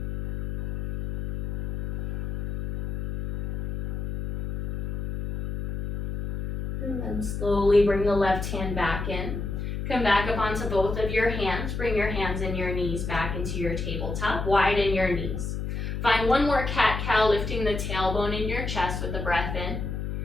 And then slowly bring the left hand back in. Come back up onto both of your hands. Bring your hands and your knees back into your tabletop. Widen your knees. Find one more cat-cow, lifting the tailbone in your chest with the breath in.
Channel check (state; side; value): noise; left; hum, 4 dB below the sound